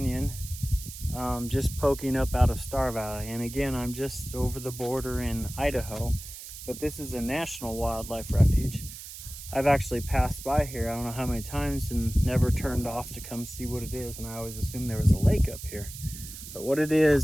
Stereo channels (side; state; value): right; noise; hiss, 12 dB below the sound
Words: just poking up out of Star Valley. And again, I'm just over the border in Idaho, but this is a national wildlife refuge. I've actually passed by here, I don't know how many times, and never turned off to come see what it is, and I always assumed there was a lake up here. But what it